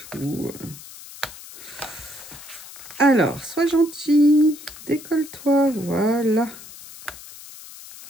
Alors, sois gentil. Décolle-toi, voilà.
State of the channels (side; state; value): left; noise; hiss, 16 dB below the sound